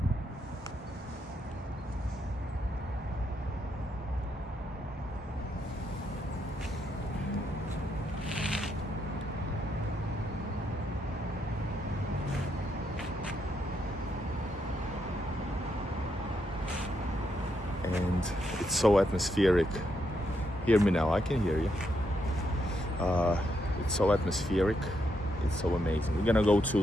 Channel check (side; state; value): both; normal; correlation 0.79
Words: And it's so atmospheric. Hear me now, I can hear you. It's so atmospheric, it's so amazing. We're gonna go to